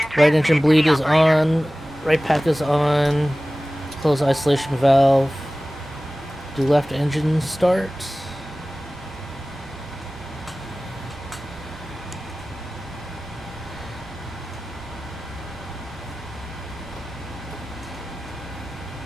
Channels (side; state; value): both; normal; correlation 0.97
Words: right engine transmitted bleed to is the operator. on. Right pack is on. Close isolation valve. Do left engine start.